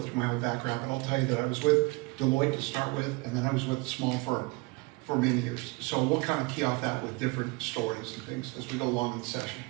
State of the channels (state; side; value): quieter; left; 26.2 dB